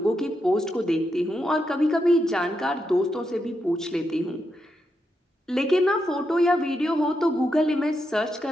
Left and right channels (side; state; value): both; normal; correlation 0.84